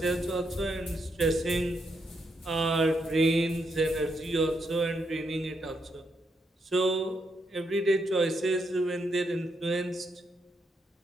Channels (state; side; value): normal; both; correlation 0.79